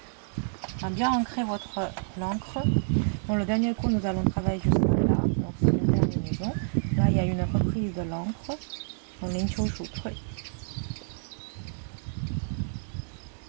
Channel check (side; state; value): left; silent; digital silence